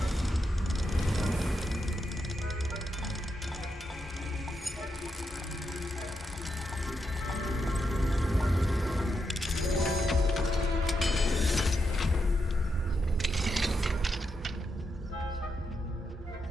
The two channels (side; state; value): both; normal; correlation 0.83